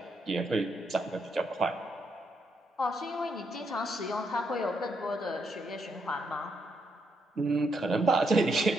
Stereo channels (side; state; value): both; normal; correlation 0.78